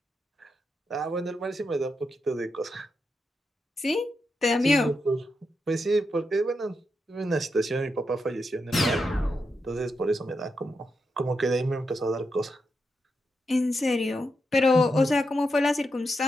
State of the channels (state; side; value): normal; both; correlation 0.85